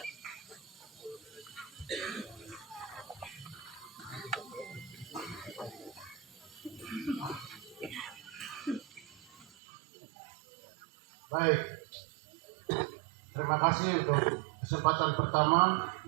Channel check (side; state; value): left; drops out; at 9.5 s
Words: Baik, terima kasih untuk kesempatan pertama